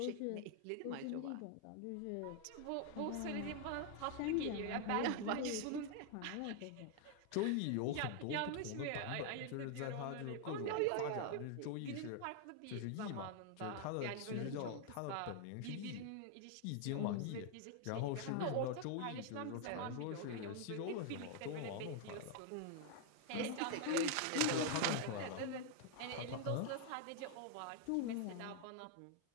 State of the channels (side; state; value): both; different; correlation 0.00